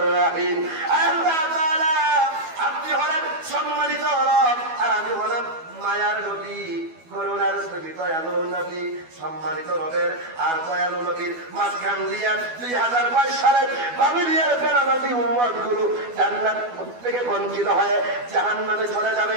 রহিম। আল্লাহ তাআলা আপনি হলেন সম্মানিত রব আর আমি হলাম মায়ার নবী, করুণার নবী, দয়ালু নবী। সম্মানিত রবের আর দয়ালু নবীর মাঝখান দিয়া 2022 সালের বাবিলিয়ার ফেরানবী উম্মত গুলো জান্নাত থেকে বঞ্চিত হয়ে জাহান্নামে চলে যাবে,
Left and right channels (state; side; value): late; left; 12 ms